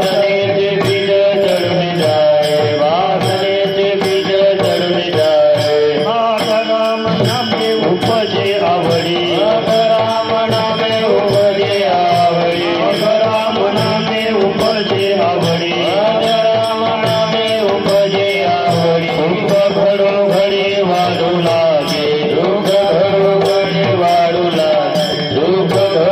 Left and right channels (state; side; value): identical; both; correlation 1.00